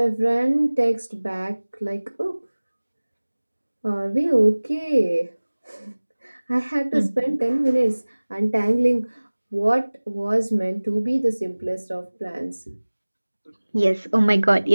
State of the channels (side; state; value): both; inverted; correlation -1.00